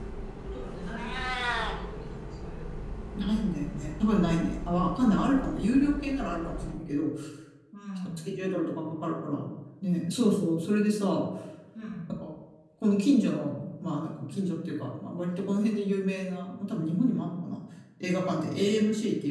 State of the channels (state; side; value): identical; both; correlation 1.00